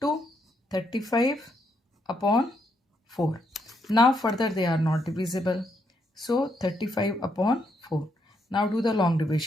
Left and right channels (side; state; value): both; normal; correlation 0.76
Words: 2. 35 upon 4. Now further they are not divisible. So 35 upon 4. Now do the long